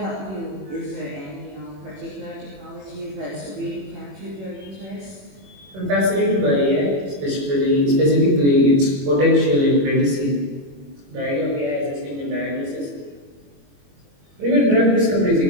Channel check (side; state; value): left; late; 21 ms